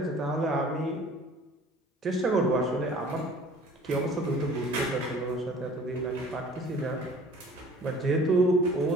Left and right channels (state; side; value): normal; both; correlation 0.49